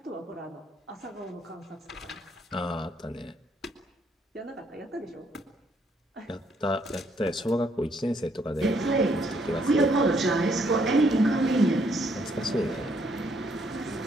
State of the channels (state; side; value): normal; both; correlation 0.70